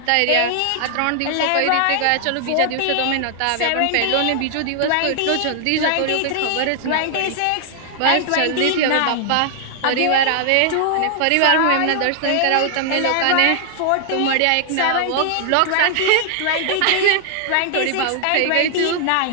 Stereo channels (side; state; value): both; different; correlation -0.01